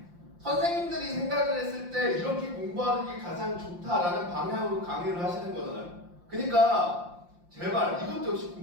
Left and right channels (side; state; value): left; late; 5.7 ms